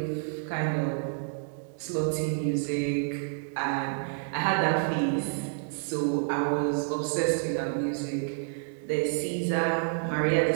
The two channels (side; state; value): left; silent; 59 dB below the other